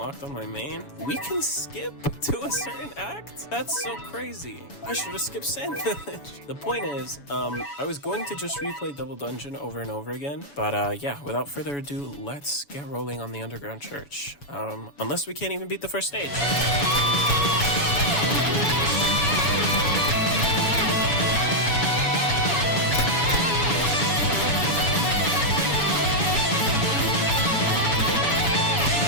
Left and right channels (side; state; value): right; late; 7.1 ms